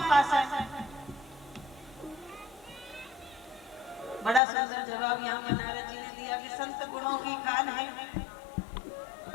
पास है। बड़ा सुंदर जवाब यहाँ पर नारद जी ने दिया कि संत गुणों की खान है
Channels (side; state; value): right; drops out; at 4.4 s